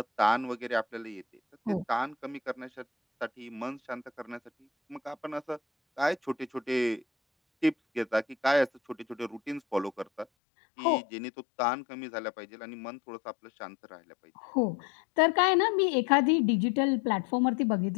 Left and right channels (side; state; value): right; drops out; at 10.2 s